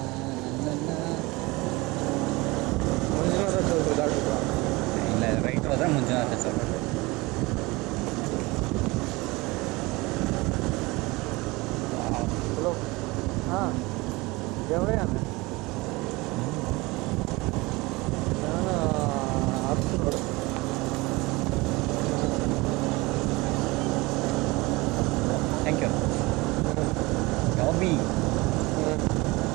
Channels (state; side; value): quieter; left; 23.0 dB